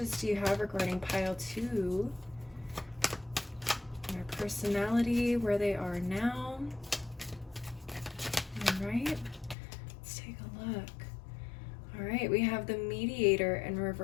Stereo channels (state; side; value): drops out; right; at 9.6 s